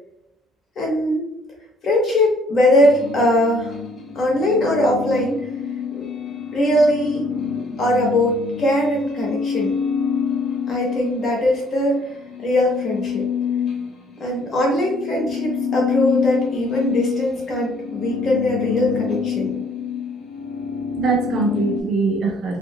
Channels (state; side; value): normal; both; correlation 0.62